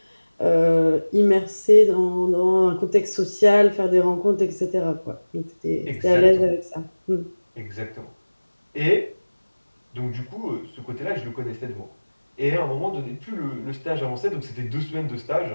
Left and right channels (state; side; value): inverted; both; correlation -1.00